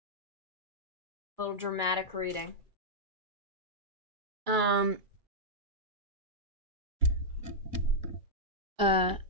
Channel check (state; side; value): late; left; 2.3 ms